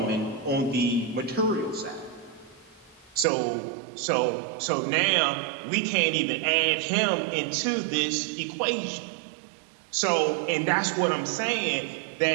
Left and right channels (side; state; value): left; drops out; at 3.2 s